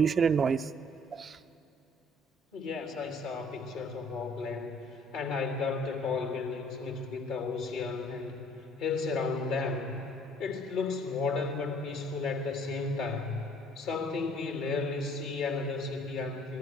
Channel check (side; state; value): both; normal; correlation 0.57